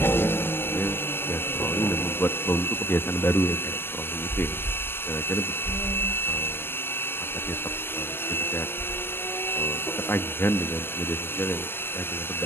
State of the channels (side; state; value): right; late; 0.10 ms